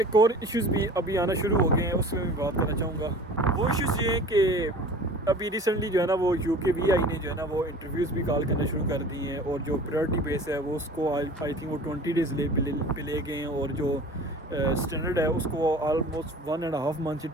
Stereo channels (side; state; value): both; normal; correlation 0.42